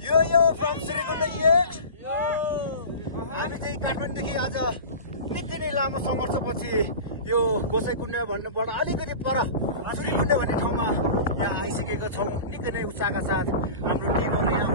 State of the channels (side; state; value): both; inverted; correlation -0.34